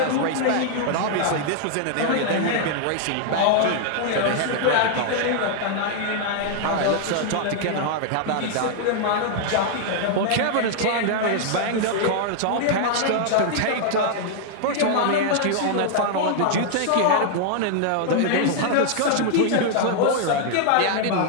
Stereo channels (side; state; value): both; different; correlation 0.00